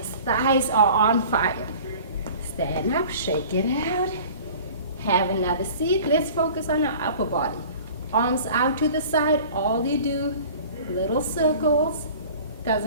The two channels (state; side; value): inverted; both; correlation -0.44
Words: Thighs are on fire. Stand up, shake it out. Have another seat. Let's focus on our upper body. Arms out to the side. All you do, little circles.